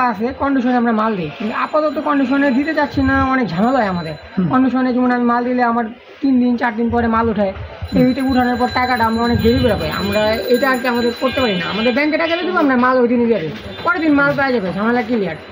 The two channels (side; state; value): both; identical; correlation 1.00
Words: আছে, কন্ডিশনে আমরা মাল দিই, কিন্তু আপাতত কন্ডিশনে দিতে চাচ্ছি না, অনেক ঝামেলা হয় আমাদের কন্ডিশনে। যেমন আমি মাল দিলে আমার 3 দিন 4 দিন পরে মাল উঠায়, এইটা উঠানোর পর টাকাটা আমরা অনেক দেরি করে পাই। আমরা এটা আর কি আমাদের করতে পারি না। আমাদের ব্যাংকে টাকা দেবো, আমরা মাল ওই দিনই দিয়ে দিই, পরের দিন মাল পাওয়া যাবে, ঝামেলা ক্লিয়ার।